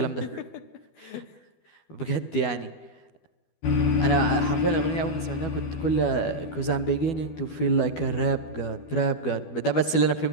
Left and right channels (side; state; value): right; late; 12 ms